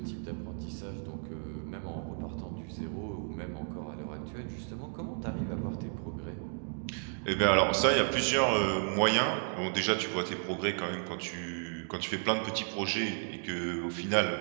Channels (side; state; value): left; silent; 56 dB below the other